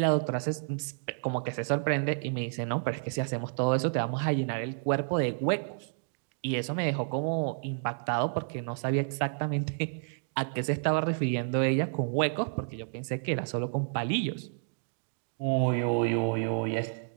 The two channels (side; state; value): left; silent; digital silence